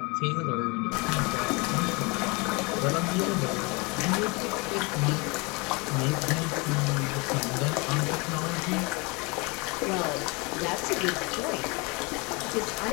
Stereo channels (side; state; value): right; quieter; 28.3 dB